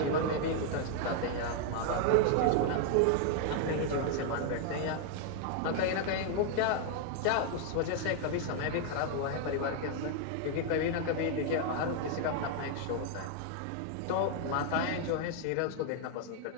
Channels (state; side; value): different; both; correlation 0.00